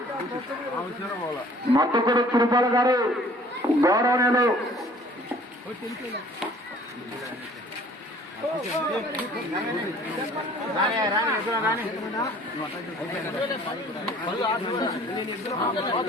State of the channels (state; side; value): normal; both; correlation 0.53